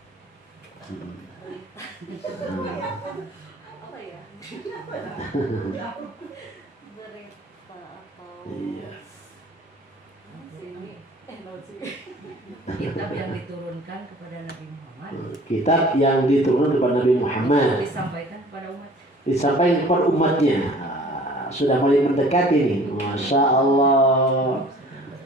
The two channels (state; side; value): normal; both; correlation 0.49